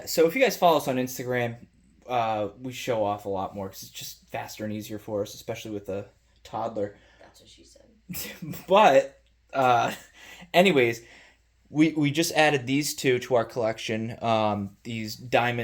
so if you guys follow us on Instagram, we show off a lot more because it's just faster and easier for us, especially with a toddler. That's what she said. But, anyways, we just added these two to our collection. These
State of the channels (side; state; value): both; identical; correlation 1.00